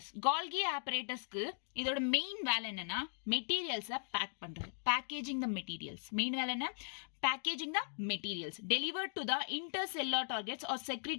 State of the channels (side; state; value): right; silent; digital silence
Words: கால்கி ஆப்பரேட்டஸ்க்கு இதோட மெயின் வேலை என்னன்னா மெட்டீரியல்ஸை பேக் பண்றது, பேக்கேஜிங் த மெட்டீரியல்ஸ். மெயின் வேலை என்ன? packaging the materials delivered to the intercellular targets or